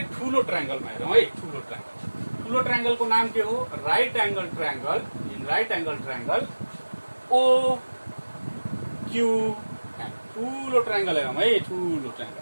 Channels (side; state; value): both; inverted; correlation -1.00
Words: ठुलो ट्रायंगलमा हेरौँ है। ठुलो ट्रायंगलको नाम के हो? Right angle triangle. In right angle triangle O Q N. ठुलो ट्रायंगल हेरौँ है। ठुलो ट्रायंगल